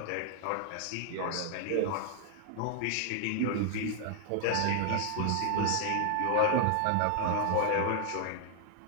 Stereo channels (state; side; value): different; both; correlation 0.00